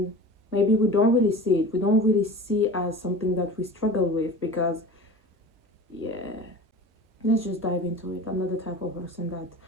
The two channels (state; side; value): normal; both; correlation 0.36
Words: maybe we don't really see it. We don't really see it as something that we struggle with, because yeah, let's just dive into it. I'm not the type of person that